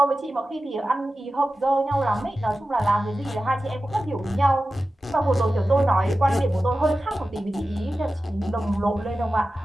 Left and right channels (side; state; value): both; normal; correlation 0.94